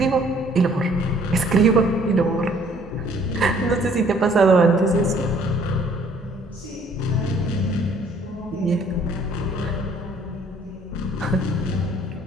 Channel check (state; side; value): normal; both; correlation 0.59